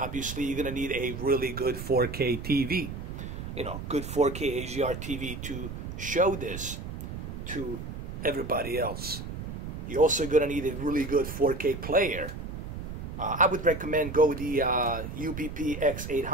you're going to need a really good 4K TV. You know, good 4K HDR TV to show this to everybody else. You're also going to need a really good 4K player. I would recommend go the UBP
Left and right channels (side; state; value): right; noise; rumble, 7 dB below the sound